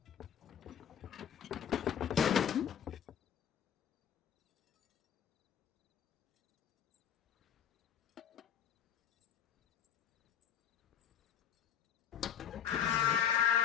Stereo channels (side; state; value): right; quieter; 8.6 dB